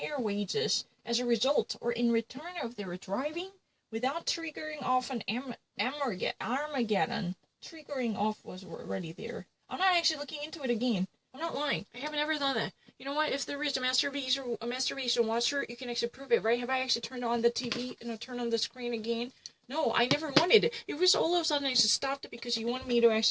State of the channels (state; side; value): identical; both; correlation 1.00